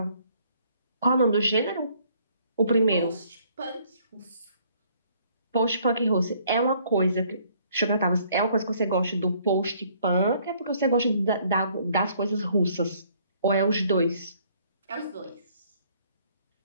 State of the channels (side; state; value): both; inverted; correlation -0.63